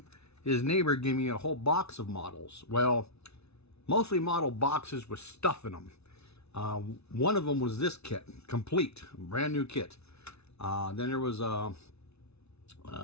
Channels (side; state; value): right; late; 0.80 ms